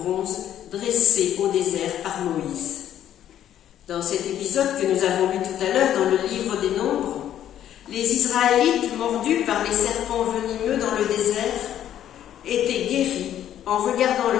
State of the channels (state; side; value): quieter; right; 11.0 dB